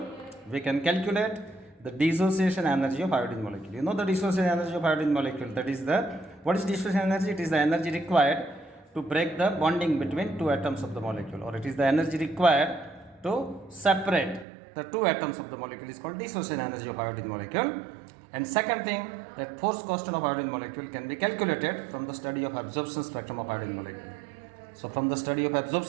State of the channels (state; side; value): drops out; left; at 14.5 s